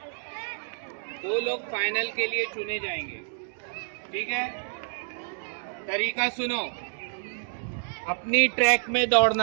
लोग फाइनल के लिए चुने जाएंगे, ठीक है? तरीका सुनो, अपनी ट्रैक में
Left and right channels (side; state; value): left; silent; digital silence